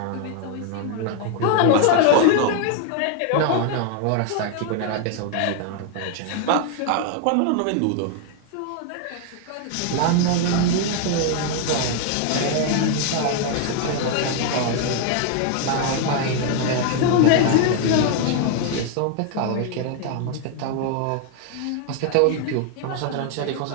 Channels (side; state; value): both; different; correlation 0.00